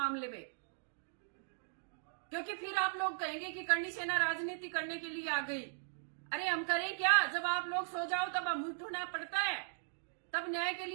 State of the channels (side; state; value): left; silent; digital silence